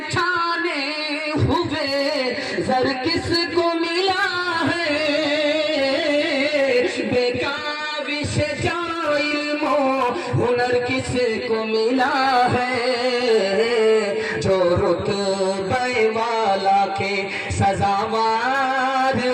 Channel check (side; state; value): both; identical; correlation 1.00